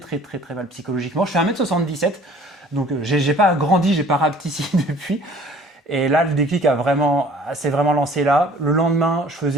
très mal psychologiquement. Je fais 1m77, donc j'ai pas grandi, j'ai pas rapetissé depuis. Et là, le déclic s'est vraiment lancé là. Le lendemain, je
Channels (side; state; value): both; normal; correlation 0.52